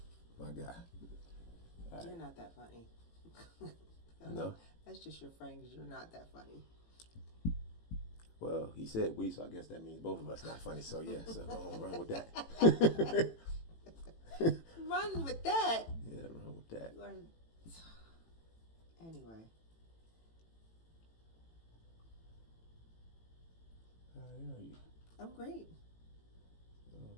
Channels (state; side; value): late; right; 18 ms